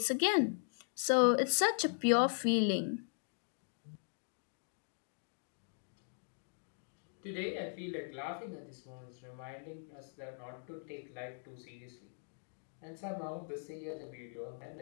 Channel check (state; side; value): silent; right; digital silence